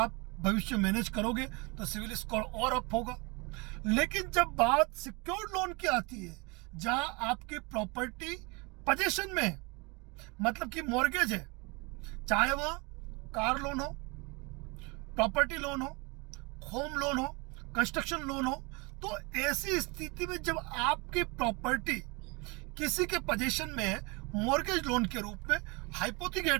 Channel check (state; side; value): quieter; left; 28.2 dB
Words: भविष्य मैनेज करोगे तो सिविल स्कोर और अप होगा। लेकिन जब बात सिक्योर्ड लोन की आती है, जहां आपकी प्रॉपर्टी पोजीशन में है, मतलब कि मॉर्गेज है, चाहे वह कार लोन हो, प्रॉपर्टी लोन हो, होम लोन हो, कंस्ट्रक्शन लोन हो, तो ऐसी स्थिति में जब आपकी प्रॉपर्टी किसी के पोजीशन में है, मॉर्गेज लोन के रूप में